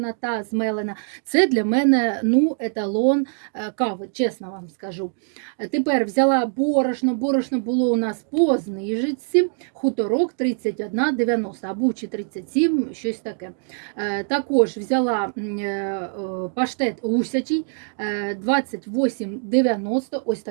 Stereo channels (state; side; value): silent; left; digital silence